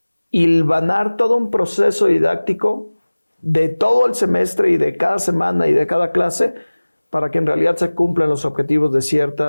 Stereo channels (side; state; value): both; inverted; correlation -1.00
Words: hilvanar todo un proceso didáctico de todo el semestre y de cada semana y de cada clase para que en realidad se cumplan los objetivos de